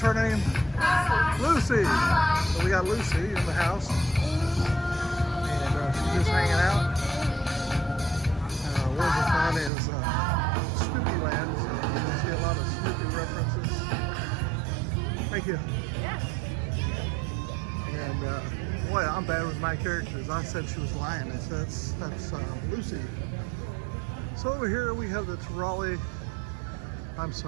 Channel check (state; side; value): drops out; left; at 9.7 s